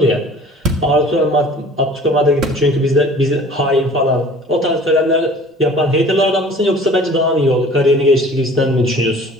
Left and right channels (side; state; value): both; normal; correlation 0.47